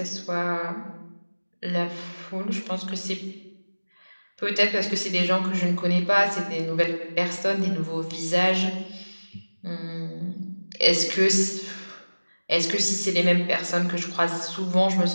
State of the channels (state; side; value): inverted; both; correlation -1.00